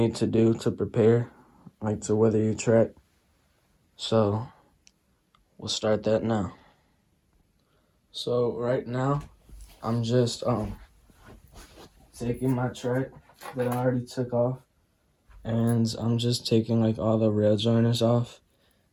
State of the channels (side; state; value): both; identical; correlation 1.00